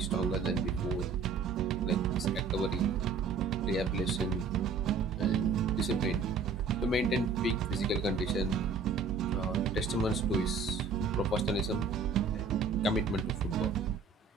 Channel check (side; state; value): left; quieter; 5.0 dB